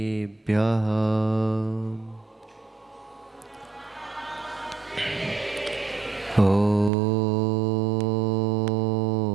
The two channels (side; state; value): left; drops out; at 6.9 s